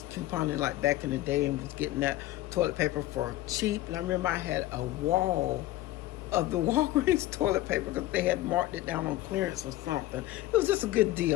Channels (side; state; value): right; quieter; 16.0 dB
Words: couponing, like back in the day, and was getting that toilet paper for cheap. And I remember I had a wall of the Walgreens toilet paper because they had marked it down on clearance or something. It was just a good